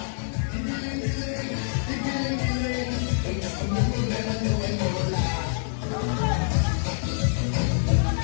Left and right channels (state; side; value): silent; right; 58 dB below the other